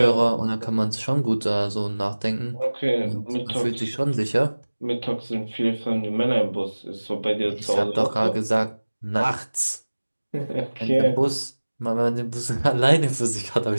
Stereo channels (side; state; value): both; inverted; correlation -1.00